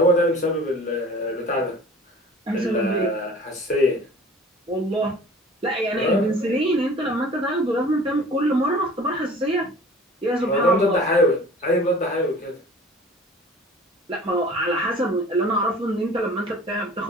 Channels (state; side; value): normal; both; correlation 0.45